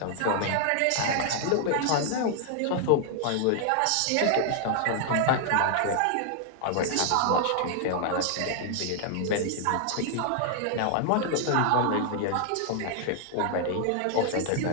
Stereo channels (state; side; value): different; both; correlation 0.00